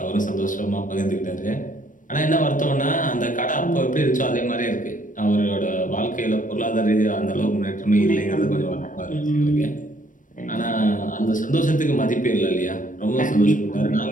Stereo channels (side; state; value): right; late; 0.38 ms